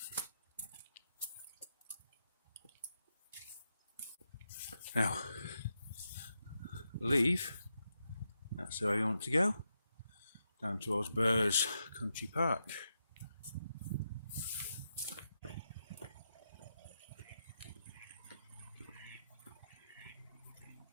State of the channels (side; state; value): both; inverted; correlation -0.85